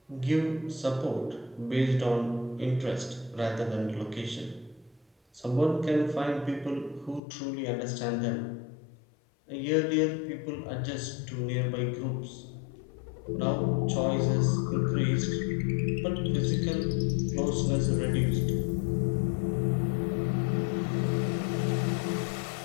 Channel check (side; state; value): right; drops out; at 7.2 s